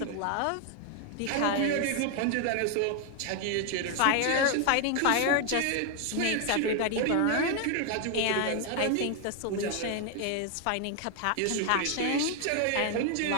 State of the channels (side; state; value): both; different; correlation 0.01